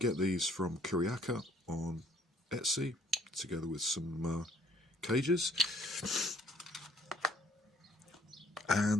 these from Kuryaka on Etsy, together with some cages,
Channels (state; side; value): normal; both; correlation 0.62